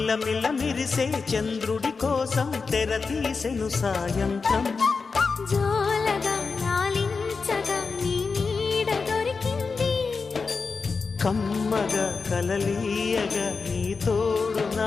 మిలమిల మిరిసే చంద్రుడి కోసం తెర తీసెను సాయంత్రం. జోలగా లాలించగా నీ నీడ దొరికింది, కమ్మగా కలలీయగా నీ తోడు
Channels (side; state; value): right; quieter; 4.7 dB